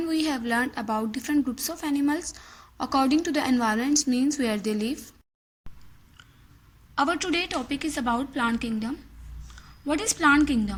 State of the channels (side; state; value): both; identical; correlation 1.00